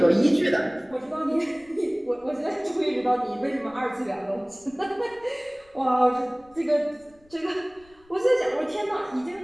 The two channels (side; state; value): left; noise; rumble, 29 dB below the sound